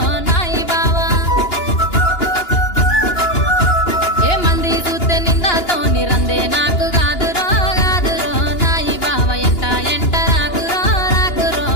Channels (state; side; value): late; right; 2.9 ms